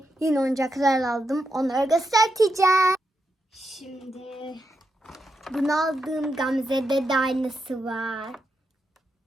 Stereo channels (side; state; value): both; normal; correlation 0.85